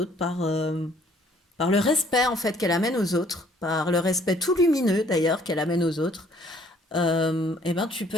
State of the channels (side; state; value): both; normal; correlation 0.60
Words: par le respect en fait qu'elle amène aux autres, par le respect tout lumineux d'ailleurs qu'elle amène aux autres, et ben tu peux